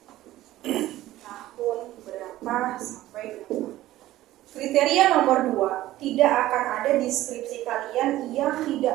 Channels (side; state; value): left; quieter; 15.3 dB